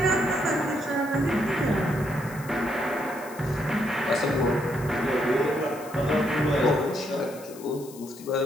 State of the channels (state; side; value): noise; left; hiss, 19 dB below the sound